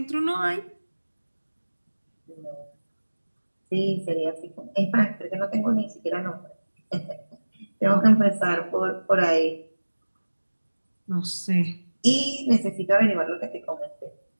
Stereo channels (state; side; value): inverted; both; correlation -1.00